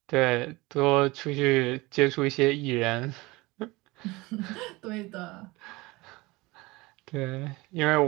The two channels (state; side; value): quieter; left; 22.3 dB